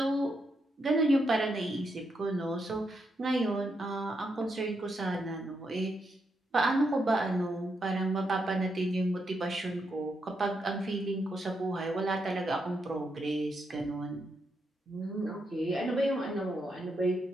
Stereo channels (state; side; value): normal; both; correlation 0.81